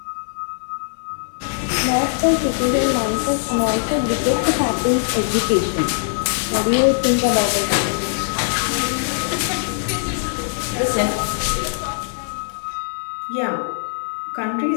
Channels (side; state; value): right; silent; 65 dB below the other